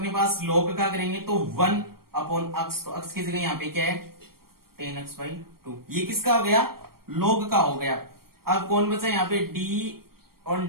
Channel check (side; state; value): left; late; 0.93 ms